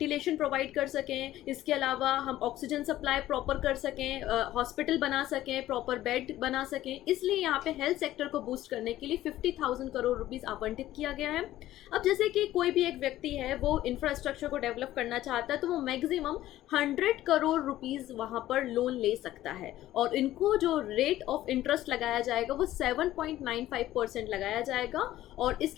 प्रोवाइड कर सकें, इसके अलावा हम ऑक्सीजन सप्लाई प्रॉपर कर सकें, हॉस्पिटल बना सकें, प्रॉपर बेड बना सकें। इसलिए यहाँ पे हेल्थ सेक्टर को बूस्ट करने के लिए 50,000 करोड़ रुपीस आवंटित किया गया है। अब जैसे कि कोई भी एक व्यक्ति है वो इंफ्रास्ट्रक्चर को डेवलप करना चाहता है तो वो मैक्सिमम 100 करोड़ रुपीस वहाँ पर लोन ले सकता है और इनको जो रेट ऑफ इंटरेस्ट लगाया जाएगा वो 7.95% लगाया जाएगा और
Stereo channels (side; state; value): right; quieter; 14.4 dB